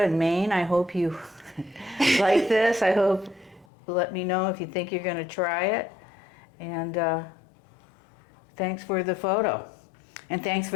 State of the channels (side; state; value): right; drops out; at 3.7 s